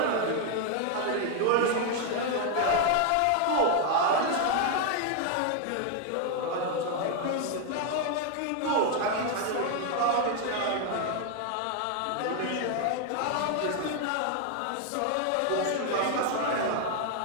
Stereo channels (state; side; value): different; both; correlation 0.01